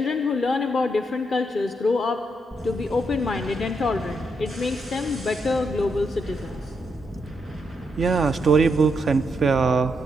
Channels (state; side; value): normal; both; correlation 0.80